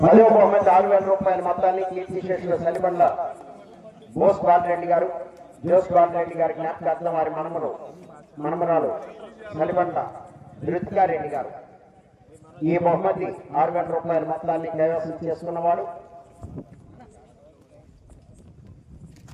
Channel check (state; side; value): identical; both; correlation 1.00